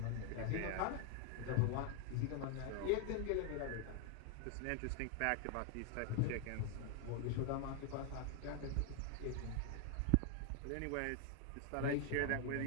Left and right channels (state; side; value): different; both; correlation 0.00